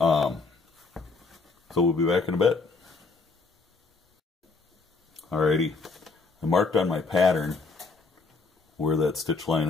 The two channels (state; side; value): quieter; right; 4.1 dB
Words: we'll be back in a bit. Alrighty, I marked on my pattern where that stitch line